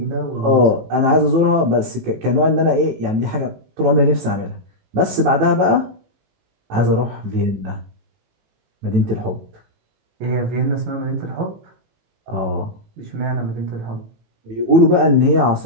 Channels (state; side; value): late; left; 18 ms